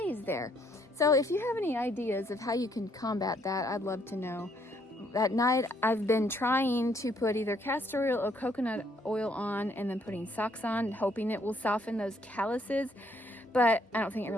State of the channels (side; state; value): both; normal; correlation 0.69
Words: there. So if you have any ideas of how you can combat that, I'd love to know. At night, I've been trying to put either castor oil or coconut oil on and then putting socks on, hoping it will soften those calluses. But I don't think it